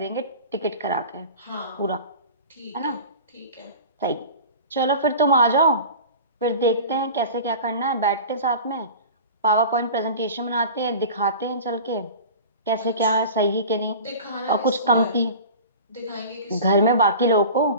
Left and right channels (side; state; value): both; inverted; correlation -0.37